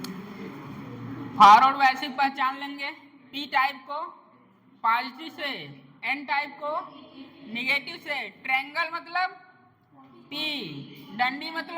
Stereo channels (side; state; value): both; identical; correlation 1.00